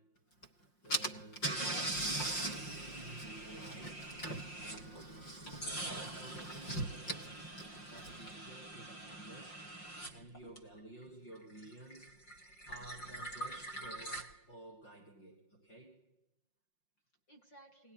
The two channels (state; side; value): late; right; 5.6 ms